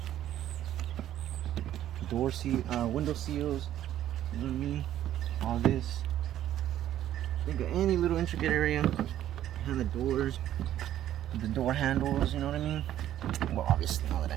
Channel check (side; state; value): left; quieter; 12.0 dB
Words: Window seals, you know what I mean? All this. Think of any little intricate area behind the doors, the door handles, you know what I mean? Well, obviously, now